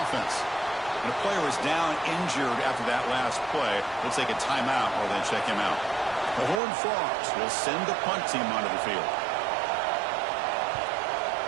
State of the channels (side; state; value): left; drops out; at 6.6 s